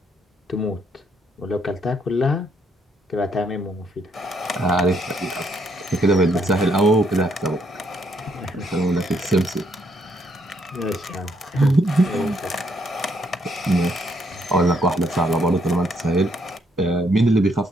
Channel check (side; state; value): both; normal; correlation 0.72